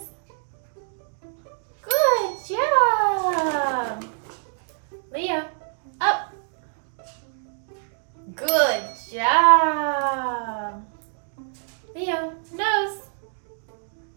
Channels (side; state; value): left; silent; digital silence